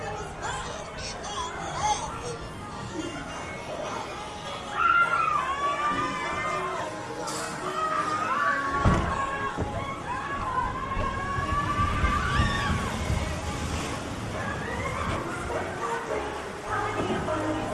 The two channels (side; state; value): both; identical; correlation 1.00